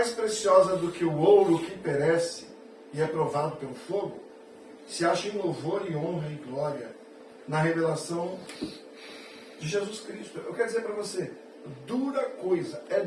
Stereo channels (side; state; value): both; identical; correlation 1.00